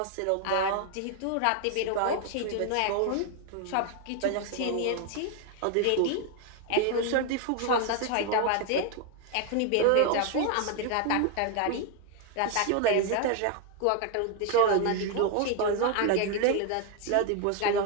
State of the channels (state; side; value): different; both; correlation 0.01